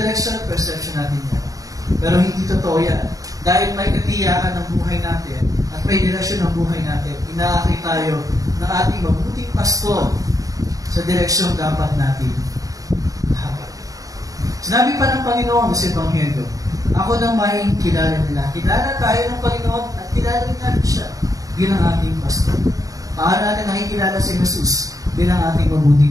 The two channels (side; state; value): left; late; 0.17 ms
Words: perception natin yan. Pero hindi totoo yan. Dahil may katiyakan ng buhay natin at may direksyon ng buhay natin, inaakit tayo ng ating mabuting pastor sa direksyon dapat natin hakat. Sinabi pa ng Panginoon sa Ebanghelyo, ako nang may kilala nila. Kilala tayo ng Panginoon at kilala rin natin siya bilang ating pastor. Paano natin nakikilala si Jesus bilang ating mabuting